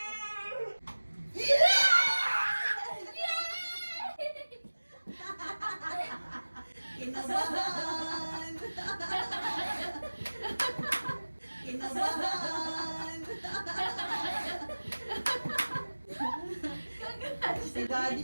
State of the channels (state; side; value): inverted; both; correlation -1.00